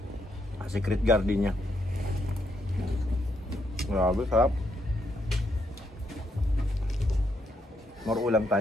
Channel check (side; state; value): both; normal; correlation 0.77